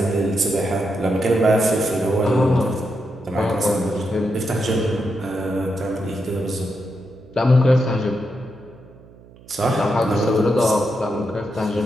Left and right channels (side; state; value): right; noise; hum, 23 dB below the sound